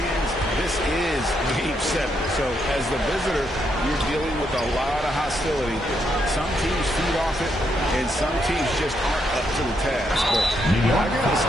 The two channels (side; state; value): both; normal; correlation 0.78